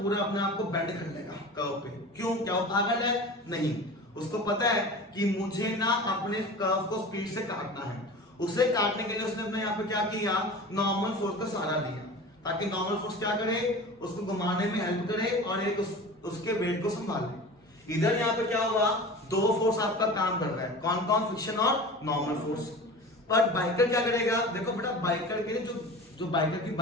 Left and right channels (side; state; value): both; normal; correlation 0.35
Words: अपने आप को बेंड कर लेगा कर्व पे। क्यों, क्या वो पागल है? नहीं, उसको पता है कि मुझे ना अपने कर्व को स्पीड से काटना है। उसे काटने के लिए उसने अपने यहाँ पे क्या किया, नॉर्मल फोर्स का सहारा लिया, ताकि नॉर्मल फोर्स क्या करे, उसको घुमाने में हेल्प करे और एक उसके वेट को संभाले। इधर यहाँ पे क्या हुआ, दो फोर्स आपका काम कर रहा है, कौन कौन, फ्रिक्शन और नॉर्मल फोर्स। पर बाइकर क्या करेगा, देखो बेटा बाइकर के लिए जो बाइकर की